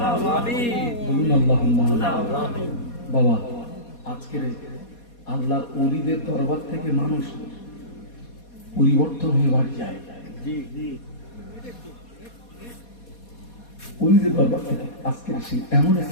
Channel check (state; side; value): late; right; 4.2 ms